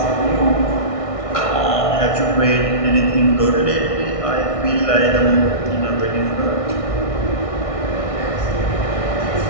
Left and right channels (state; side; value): late; right; 1.6 ms